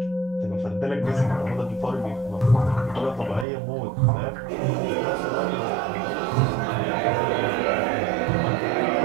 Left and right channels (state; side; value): drops out; left; at 3.5 s